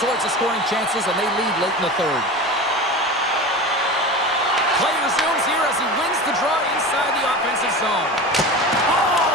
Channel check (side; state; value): both; normal; correlation 0.30